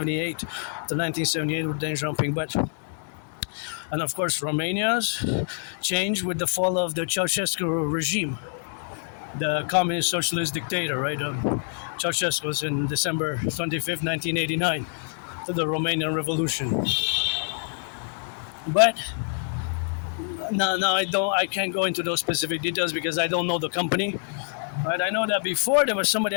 with Deng Xiaoping. And of course, Romania's change with the fall of the Ceausescu regime, the communist socialist dictator, right? Ceausescu was in December 25th, 1989, to the Romanian Revolution. But no, I can't go into those specific details because I don't know the company. Right? I know that before there was somebody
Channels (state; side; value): silent; right; digital silence